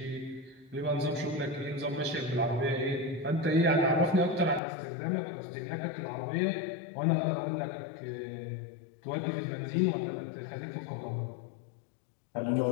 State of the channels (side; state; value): right; drops out; at 4.6 s